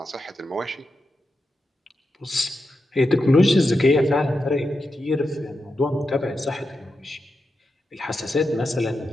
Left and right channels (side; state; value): both; normal; correlation 0.88